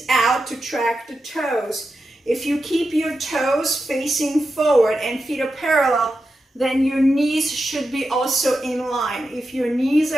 out to track the toes. If you keep your toes facing forward and feet are parallel, then your knees should be also in line. If your knees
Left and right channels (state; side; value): normal; both; correlation 0.89